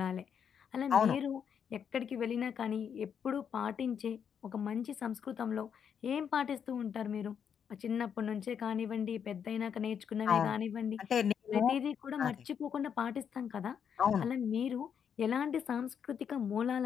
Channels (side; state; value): right; quieter; 7.7 dB